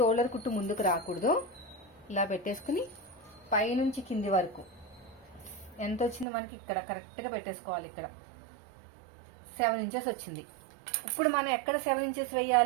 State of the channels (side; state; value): left; drops out; at 6.2 s